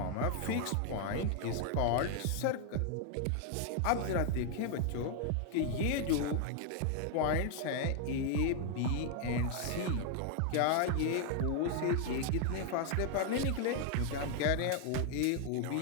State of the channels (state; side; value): different; both; correlation 0.00